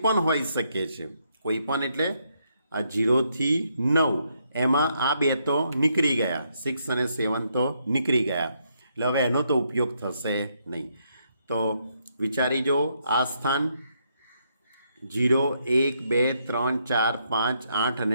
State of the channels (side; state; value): both; inverted; correlation -0.76